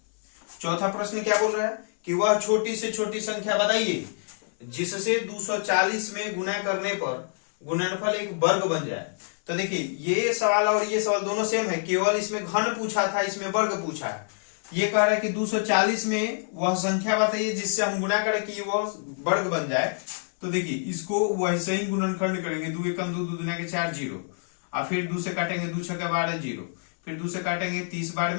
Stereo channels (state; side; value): silent; right; 60 dB below the other